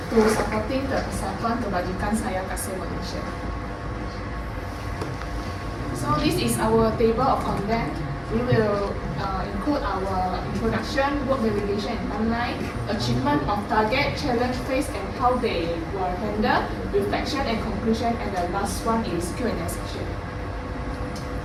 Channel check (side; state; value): both; identical; correlation 1.00